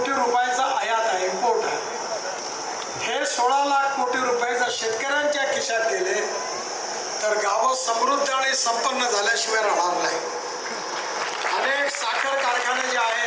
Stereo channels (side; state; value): both; identical; correlation 1.00